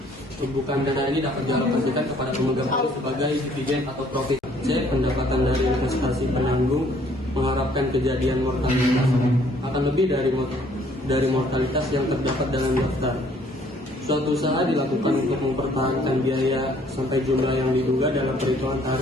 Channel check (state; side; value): normal; both; correlation 0.61